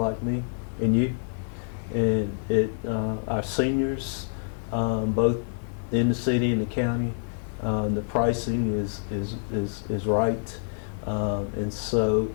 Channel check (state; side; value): silent; right; 60 dB below the other